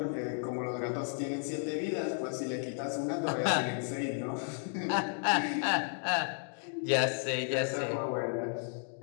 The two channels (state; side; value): silent; right; 55 dB below the other